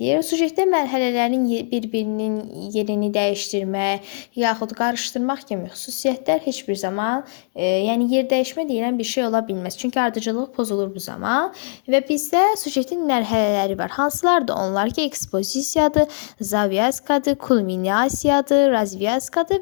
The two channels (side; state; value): right; silent; digital silence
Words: Sujetdə mərhələlərin bir-birinin yerini dəyişdirmək, yaxud qarışdırmaq kimi xüsusiyyətlər heç bir zaman, yəni yer dəyişmə deyilən bir şey ola bilməz. Çünki ardıcıllıq pozulur bu zaman və bizdə sujetin mərhələləri var. Hansılardır onlar ki, ekspozisiyadır, zavyaskadır, kulminasiyadır,